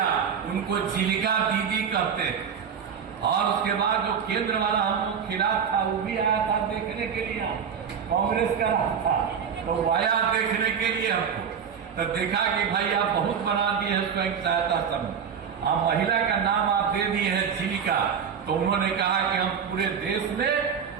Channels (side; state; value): left; quieter; 7.2 dB